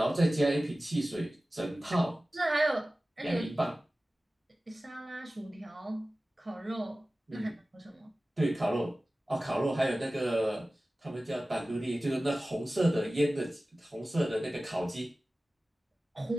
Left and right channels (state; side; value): normal; both; correlation 0.96